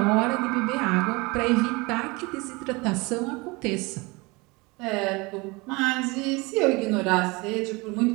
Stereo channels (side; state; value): left; quieter; 25.4 dB